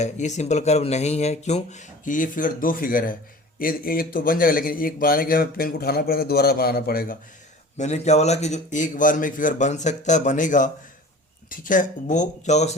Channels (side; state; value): both; normal; correlation 0.41